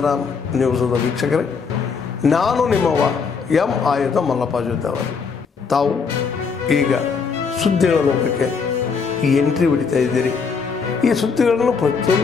ನ್ಯೂಸದ ವೀಕ್ಷಕರೇ, ನಾನು ನಿಮ್ಮವ ಎಂ ಆಯುಧ ಮಲ್ಲಪ್ಪ ಜೊತೆ ಅವರು. ತಾವು ಈಗ ಸುದ್ದಿಗಳ ಲೋಕಕ್ಕೆ ಎಂಟ್ರಿ ಹೊಡಿತಾ ಇದ್ದೀರಿ. ಈ ಸುದ್ದಿಗಳನ್ನು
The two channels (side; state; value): right; quieter; 5.5 dB